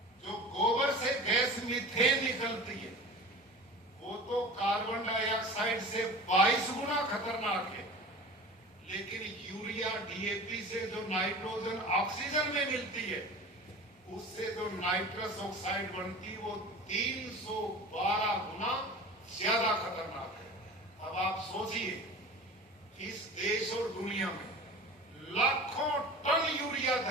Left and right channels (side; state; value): both; normal; correlation 0.36